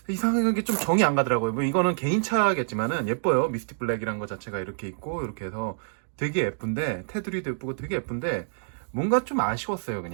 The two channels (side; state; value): left; silent; digital silence